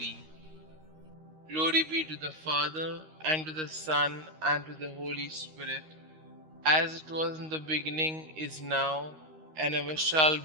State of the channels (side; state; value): left; late; 13 ms